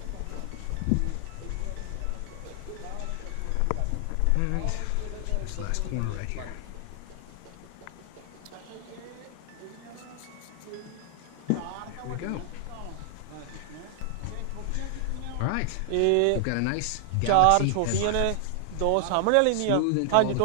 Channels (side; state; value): both; different; correlation 0.00